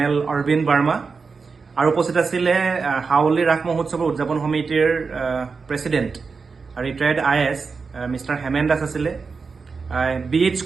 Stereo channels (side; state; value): left; quieter; 4.9 dB